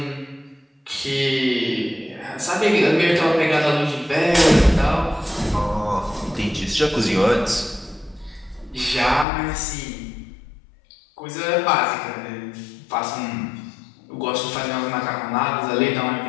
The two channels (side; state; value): right; drops out; at 9.2 s